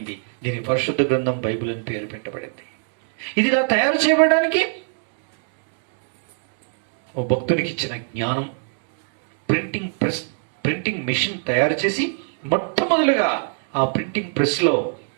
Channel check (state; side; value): silent; left; 59 dB below the other